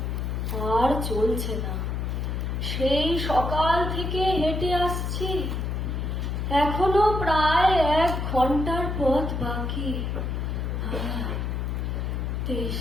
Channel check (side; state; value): left; noise; hum, 2 dB below the sound